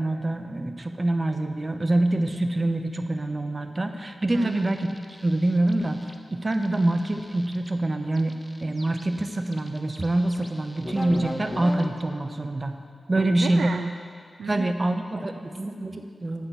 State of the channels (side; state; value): both; normal; correlation 0.98